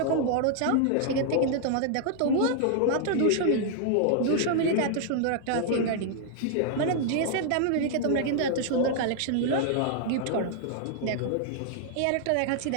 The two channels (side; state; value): both; different; correlation 0.00